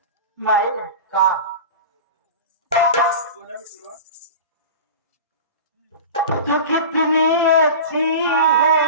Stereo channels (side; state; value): both; inverted; correlation -0.32